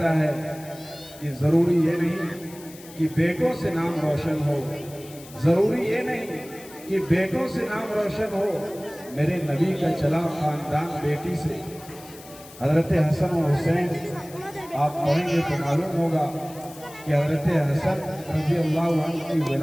ہے کہ ضروری یہ نہیں کہ بیٹوں سے نام روشن ہو، ضروری یہ نہیں کہ بیٹوں سے نام روشن ہو، میرے نبی کا چلا خاندان بیٹی سے۔ حضرت حسن و حسین آپ پڑھیں گے تو معلوم ہوگا کہ حضرت حسن رضی اللہ عنہ کی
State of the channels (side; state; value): left; noise; hiss, 19 dB below the sound